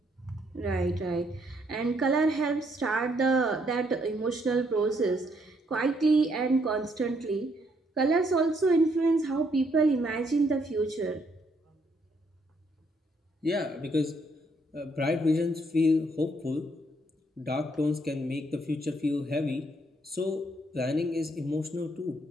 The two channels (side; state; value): both; normal; correlation 0.71